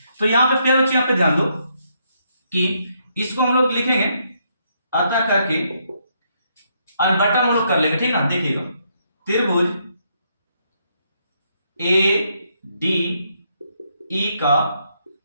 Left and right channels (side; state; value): both; inverted; correlation -0.75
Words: तो यहां पे क्या बच्चों, यहां पे ध्यान दो कि इसको हम लोग लिखेंगे अतः करके और बटा हम लोग कर लेंगे, ठीक ना। देखिएगा, त्रिभुज ADE का